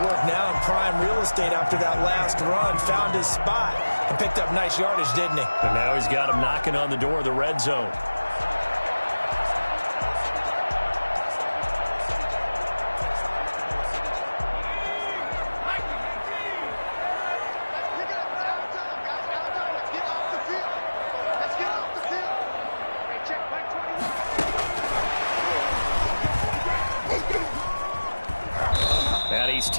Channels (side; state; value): both; inverted; correlation -1.00